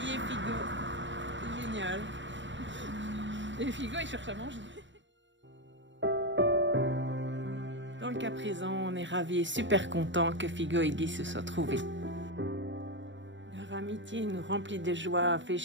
et Figo. C'est génial. Et Figo, il cherche à manger. Dans le cas présent, on est ravis et super contents que Figo et Guy se soient trouvés. Leur amitié nous remplit de joie, fait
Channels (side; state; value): left; late; 0.54 ms